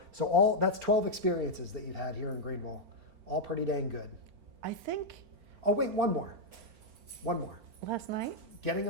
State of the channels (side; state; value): left; late; 4.4 ms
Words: So that's 12 experiences that you've had here in Greenville. All pretty dang good. I think Oh wait, one more. last night, Getting